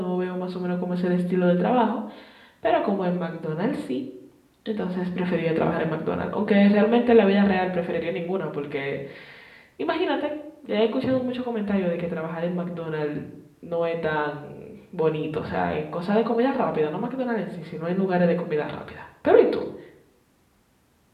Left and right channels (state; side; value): identical; both; correlation 1.00